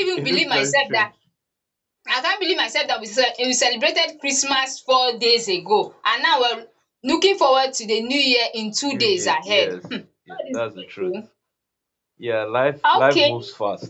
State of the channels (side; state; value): both; identical; correlation 1.00